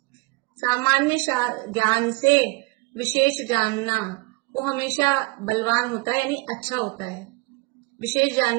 सामान्य ज्ञान से विशेष जानना वो हमेशा बलवान होता है, यानी अच्छा होता है। विशेष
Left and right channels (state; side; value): quieter; left; 25.8 dB